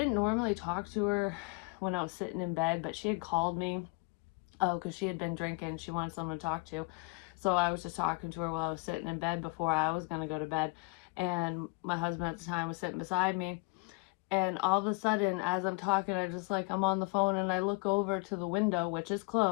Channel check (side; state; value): right; quieter; 28.7 dB